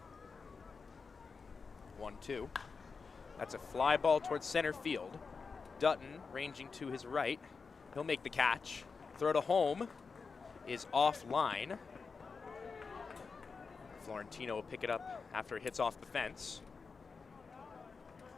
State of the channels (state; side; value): quieter; right; 5.0 dB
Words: Two. That's a fly ball towards center field. Dutton ranging to his right. He'll make the catch. Throw to home is offline. Florentino will pick it up after it hits off the fence.